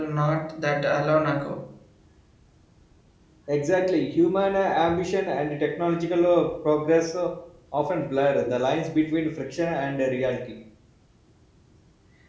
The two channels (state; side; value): identical; both; correlation 1.00